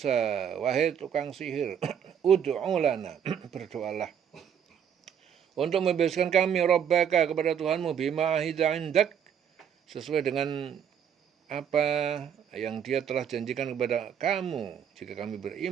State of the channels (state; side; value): quieter; left; 8.4 dB